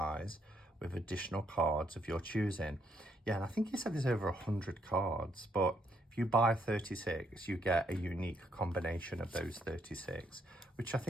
with additional cards of your choosing. Yeah, and I think he said there's over 100 cards, but if you buy 36, you get a unique combination of those 36, which I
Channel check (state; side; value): normal; both; correlation 0.74